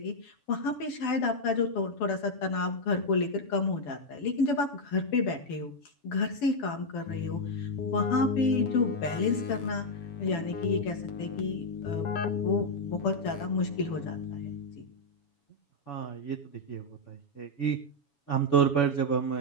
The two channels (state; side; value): late; right; 7.1 ms